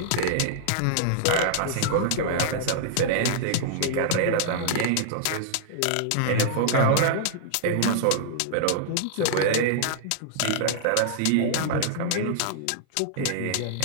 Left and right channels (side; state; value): both; different; correlation -0.01